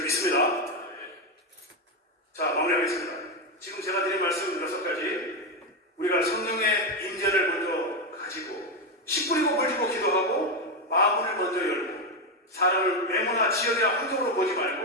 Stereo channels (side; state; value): both; normal; correlation 0.08